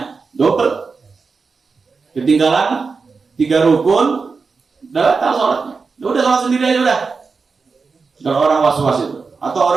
Double. Ketinggalan 3 rukun batal sholatnya. Udah sholat sendiri aja udah. Kalau orang was-was itu. Atau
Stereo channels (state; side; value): quieter; left; 4.7 dB